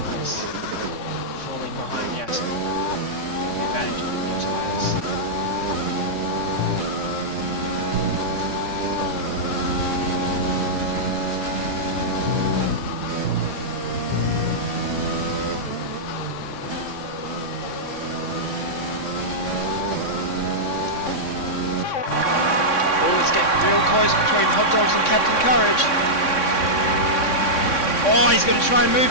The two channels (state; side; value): late; right; 3.6 ms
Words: is falling behind Yasin. The advantage of the new tyres. Real close between Hot Dogs and Captain Courage. Oh, he's going to try and move